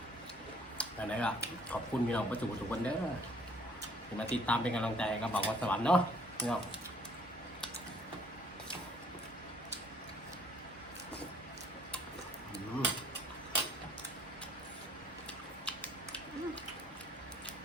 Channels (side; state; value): both; normal; correlation 0.60